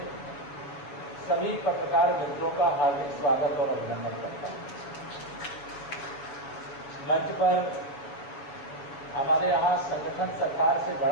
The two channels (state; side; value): late; right; 7.1 ms